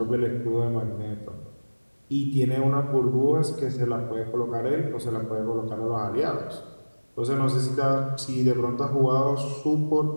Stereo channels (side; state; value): both; inverted; correlation -1.00